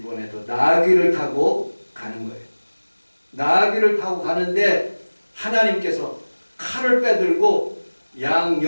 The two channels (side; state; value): both; inverted; correlation -1.00